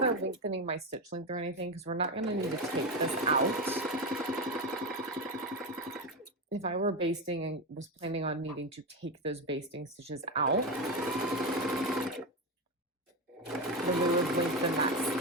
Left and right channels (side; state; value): both; normal; correlation 0.15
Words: lengthening my stitch length or anything because we're not going to need to take this out. If I were basting and was planning on needing to take those basting stitches out, then we would lengthen that